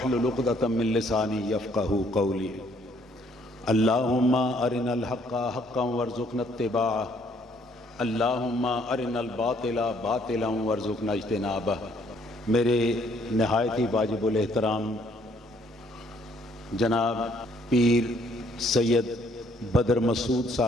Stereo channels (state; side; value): normal; both; correlation 0.65